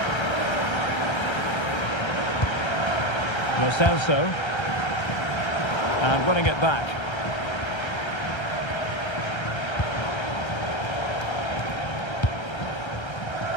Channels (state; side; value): late; right; 1.3 ms